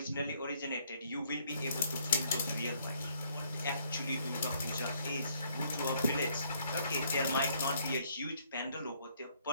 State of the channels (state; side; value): inverted; both; correlation -0.67